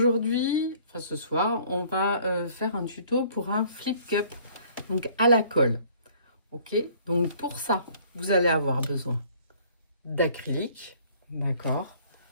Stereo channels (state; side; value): inverted; both; correlation -0.56